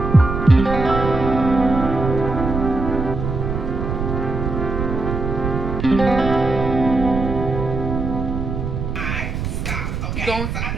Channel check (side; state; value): right; noise; rumble, 4 dB below the sound